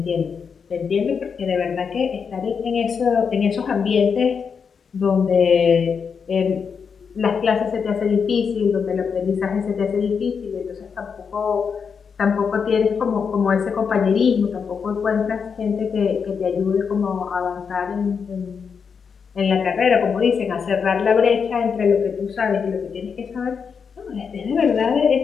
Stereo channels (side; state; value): right; quieter; 6.2 dB